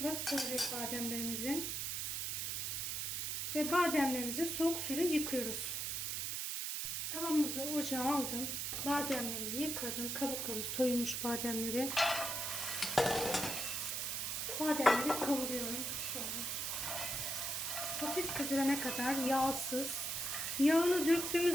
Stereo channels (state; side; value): noise; right; hiss, 1 dB below the sound